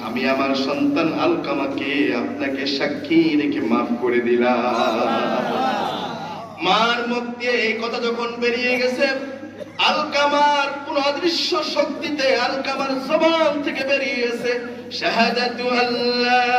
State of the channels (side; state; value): both; identical; correlation 1.00